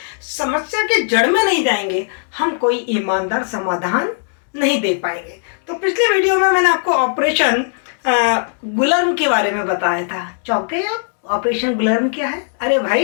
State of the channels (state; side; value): silent; right; digital silence